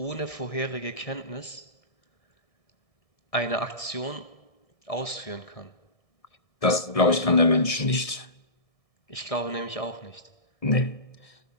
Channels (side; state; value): right; late; 1.6 ms